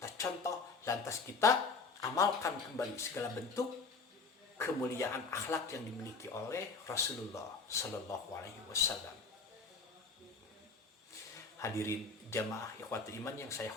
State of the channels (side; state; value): right; quieter; 4.4 dB